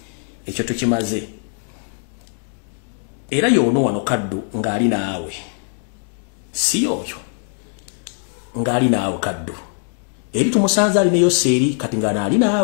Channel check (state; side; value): silent; right; 56 dB below the other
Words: Ekyo tukimaze. Era yono wano kaddu ngali naawe. Si yoyo. Ngali naawe kaddu. Eri tumusanza ali ne Yoseri kati ngana ali